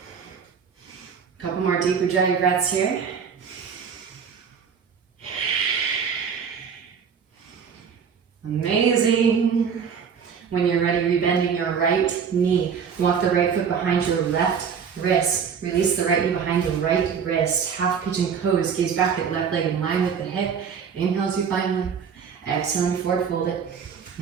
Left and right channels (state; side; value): quieter; left; 6.8 dB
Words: Couple more deep ujjayi breaths here. Amazing. When you're ready, rebending your right knee. Walk the right foot behind your left wrist. Release the right knee behind the right wrist. Half pigeon pose. Gaze back at left leg in line with the hip. Inhale as you find lift. Exhale, forward fold it.